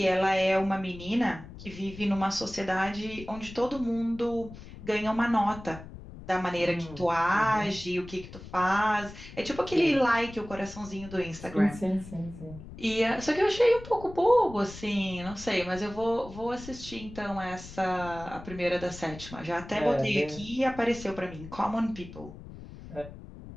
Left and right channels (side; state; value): left; noise; rumble, 15 dB below the sound